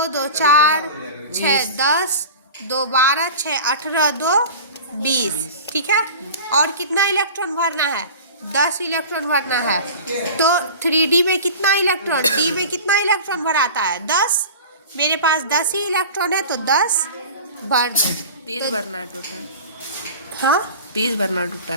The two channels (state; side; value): inverted; both; correlation -0.36